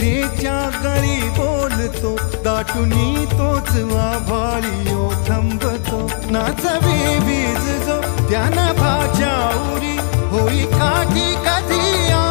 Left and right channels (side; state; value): right; silent; 56 dB below the other